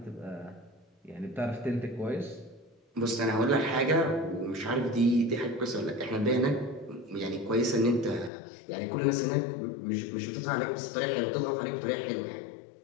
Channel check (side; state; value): right; drops out; at 8.3 s